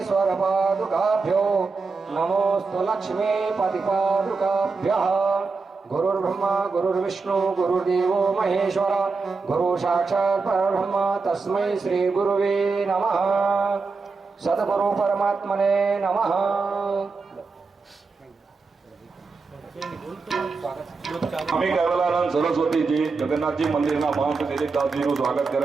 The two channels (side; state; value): left; quieter; 4.4 dB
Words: पादुकाभ्यो नमोस्तु लक्ष्मी पतिपादुकाभ्यः। गुरुर्ब्रह्मा गुरुर्विष्णु गुरुर्देवो महेश्वर गुरु साक्षात् परब्रह्म तस्मै श्री गुरुवे नमः। सद्गुरु परमात्मने नमः। स्वामी कैवलानंद सरस्वती जी जगन्नाथ जी मंदिर ना महंत दिलीप दास जी નું સ્વાગત